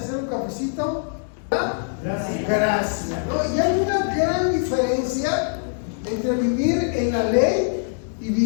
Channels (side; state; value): right; silent; digital silence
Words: un cafecito? Gracias. Gracia, ¿no? Y hay una gran diferencia entre vivir en la ley y